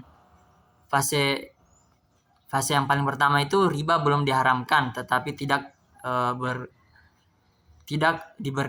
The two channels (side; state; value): both; identical; correlation 1.00